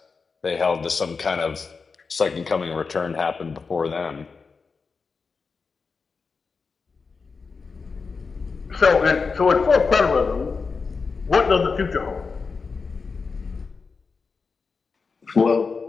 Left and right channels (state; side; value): quieter; right; 4.8 dB